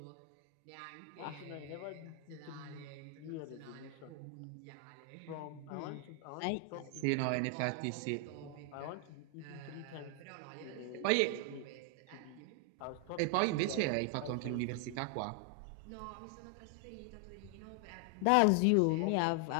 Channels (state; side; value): different; both; correlation 0.00